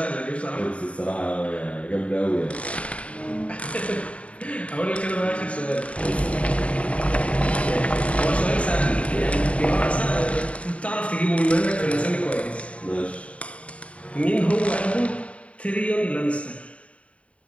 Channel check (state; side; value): late; right; 0.064 ms